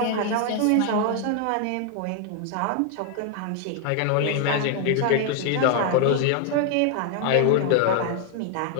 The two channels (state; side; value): different; both; correlation 0.00